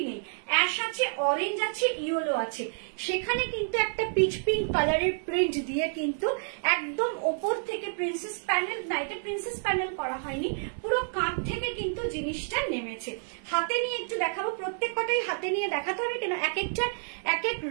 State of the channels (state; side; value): silent; left; 58 dB below the other